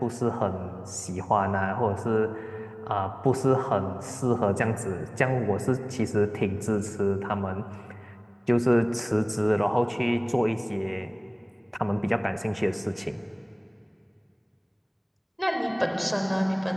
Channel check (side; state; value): both; identical; correlation 1.00